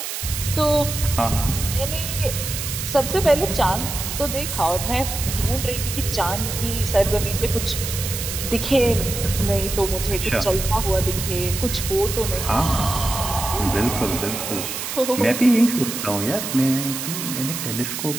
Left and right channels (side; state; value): right; noise; hiss, 5 dB below the sound